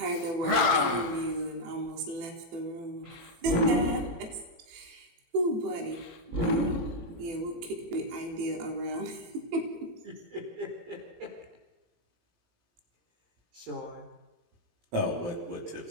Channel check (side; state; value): left; late; 18 ms